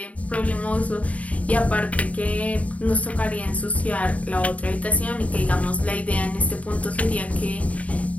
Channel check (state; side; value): late; right; 0.068 ms